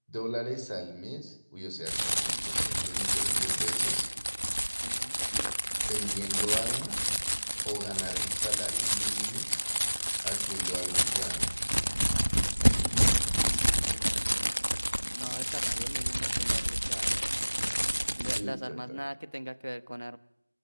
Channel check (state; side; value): inverted; both; correlation -1.00